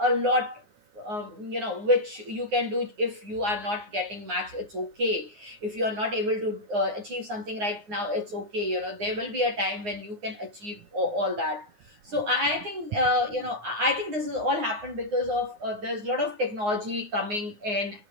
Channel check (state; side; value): late; left; 9.6 ms